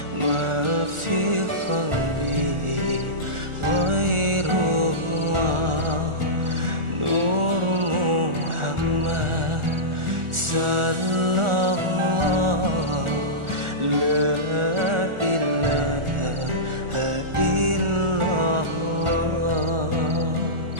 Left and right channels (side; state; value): left; late; 1.4 ms